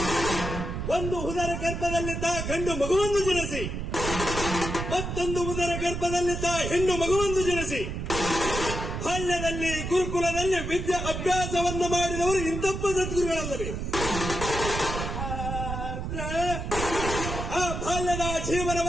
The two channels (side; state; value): right; noise; rumble, 4 dB below the sound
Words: ಒಂದು ಉದರ ಗರ್ಭದಲ್ಲಿದ್ದ ಗಂಡು ಮಗುವನ್ನು ಜನಿಸಿ ಮತ್ತೊಂದು ಉದರ ಗರ್ಭದಲ್ಲಿದ್ದ ಹೆಣ್ಣು ಮಗುವನ್ನು ಜನಿಸಿ ಬಾಲ್ಯದಲ್ಲಿ ಗುರುಕುಲದಲ್ಲಿ ವಿದ್ಯಾ ಅಭ್ಯಾಸವನ್ನು ಮಾಡಿದವರು ಇಂತಪ್ಪ ಸದ್ಗುರುಗಳಲ್ಲವೇ. ಆ ಬಾಲ್ಯದ